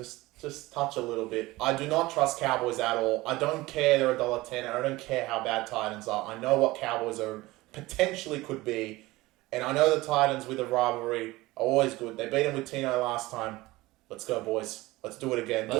touch a little bit. I do not trust Cowboys at all. I don't care they're $1.10. I don't care how bad Titans are. I know what Cowboys are potentially could be. And I know the Titans with a rivalry are always good. They beat them with Tino last time. Let's go, boys. Let's do it again.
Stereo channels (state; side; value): quieter; left; 19.7 dB